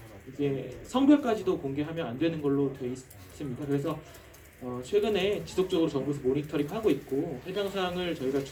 이제 성별까지도 공개하면 안 되는 걸로 되어 있습니다. 그래서 최근에 지속적으로 정부에서 모니터링하고 있고 해당 사항을 저희가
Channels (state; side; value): identical; both; correlation 1.00